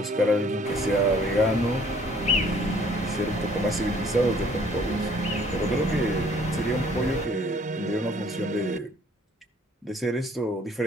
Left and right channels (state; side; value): normal; both; correlation 0.58